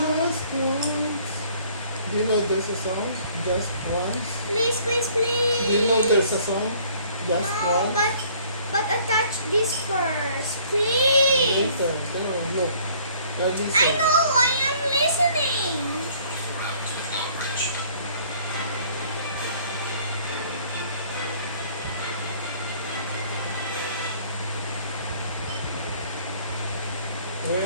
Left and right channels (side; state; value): both; inverted; correlation -0.57